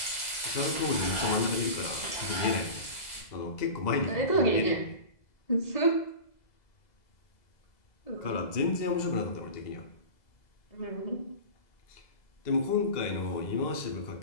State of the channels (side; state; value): right; late; 2.0 ms